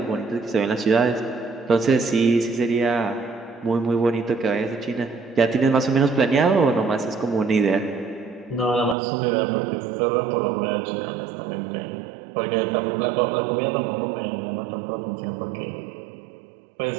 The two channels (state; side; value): drops out; left; at 9.0 s